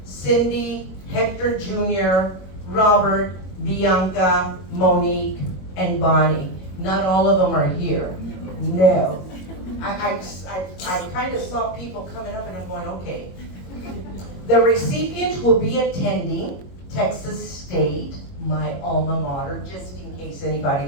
Cindy, Hector Jr., Robert, Bianca, Monique, and Bonnie. Not all of them are here. No. I kind of saw people coming up and I'm going, okay. The recipient will be attending Texas State, my alma mater, just in case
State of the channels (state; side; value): late; right; 21 ms